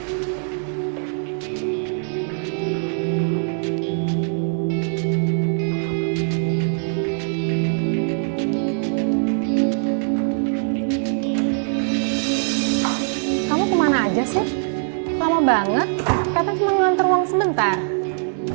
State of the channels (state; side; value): silent; left; 64 dB below the other